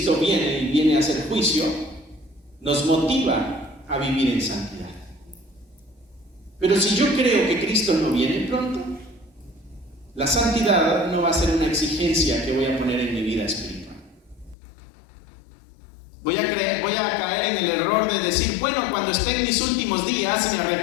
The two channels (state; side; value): drops out; right; at 14.6 s